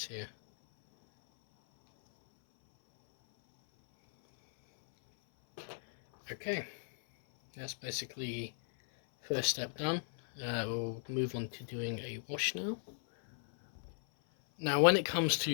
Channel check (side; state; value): right; silent; 54 dB below the other